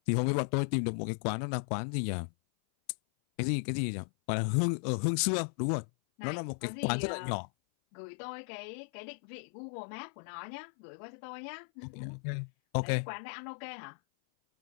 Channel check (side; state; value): right; silent; 54 dB below the other